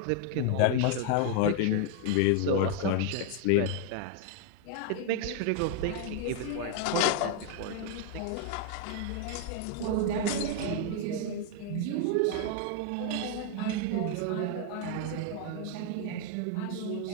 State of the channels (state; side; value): different; both; correlation 0.00